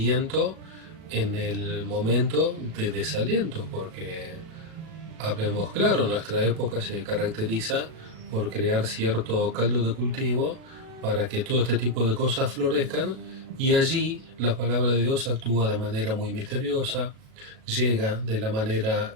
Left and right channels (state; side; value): late; left; 37 ms